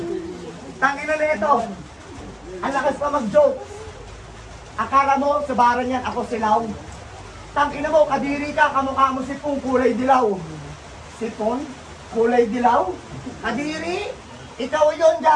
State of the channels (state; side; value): identical; both; correlation 1.00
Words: Tangina nito. Ang lakas pa mag-joke. Akala mo, sa baran yan, ako silaw. Tangina mo, kadiri ka, kamukha mo sipong kulay dilaw. Sipon? Kulay dilaw? Kadiri? Ikaw yon